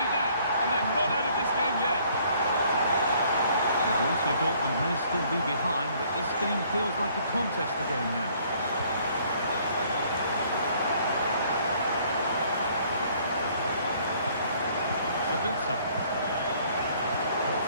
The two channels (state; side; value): inverted; both; correlation -0.61